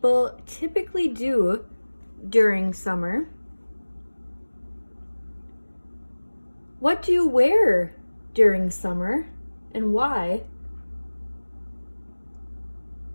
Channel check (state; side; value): inverted; both; correlation -1.00